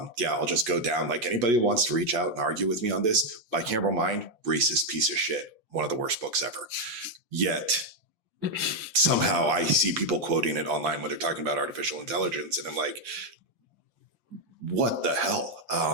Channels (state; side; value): late; left; 5.8 ms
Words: just go down. Like, anybody who wants to reach out and argue with me on this, bicameral mind, racist piece of shit, one of the worst books ever. Yet somehow I see people quoting it online when they're talking about artificial intelligence, and I'm like, what the hell?